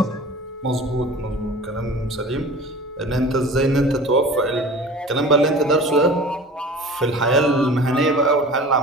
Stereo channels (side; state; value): both; normal; correlation 0.40